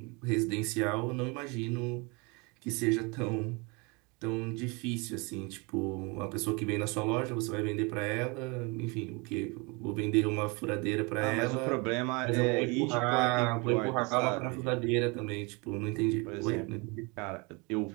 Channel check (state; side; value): quieter; left; 29.3 dB